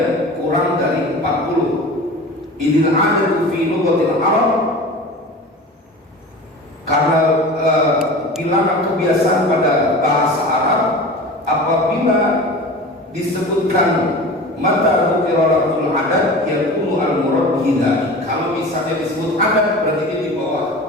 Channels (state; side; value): normal; both; correlation 0.35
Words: kurang dari 40. Idil adadu fi lughatil Arab, karena bilangan kebiasaan pada bahasa Arab apabila disebutkan mata qira'atul adad yakunu al-murad bihi. Kalau misalnya disebut adad berarti dia di